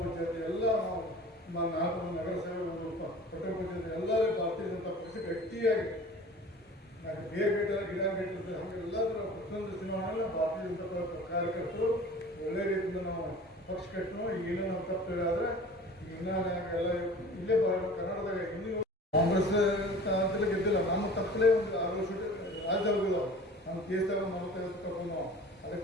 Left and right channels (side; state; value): both; normal; correlation 0.43